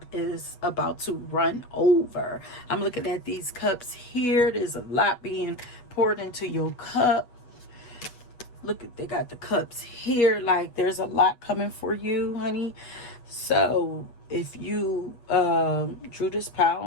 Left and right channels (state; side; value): late; right; 8.2 ms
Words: is about to run over. I'm looking at these cups here. There's a lot being poured into your cup. Look at, they got the cups here. Like, there's a lot coming for you, honey. So if you drew this